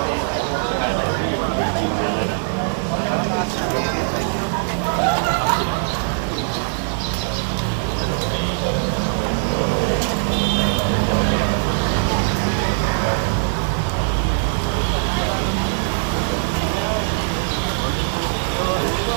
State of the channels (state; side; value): silent; left; digital silence